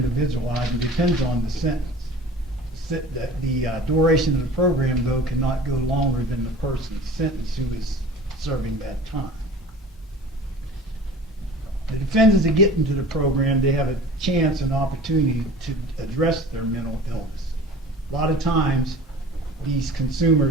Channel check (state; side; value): normal; both; correlation 0.41